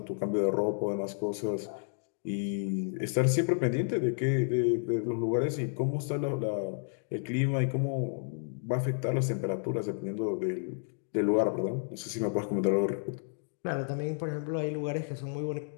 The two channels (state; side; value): silent; right; digital silence